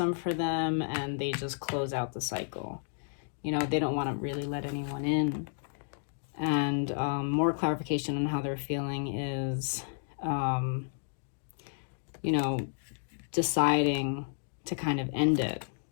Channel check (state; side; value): silent; right; digital silence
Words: for them, and they just close out the cycle. You know, they don't want to really let anyone in. And more clarification on how they're feeling is, you know, deciding to kind of end it.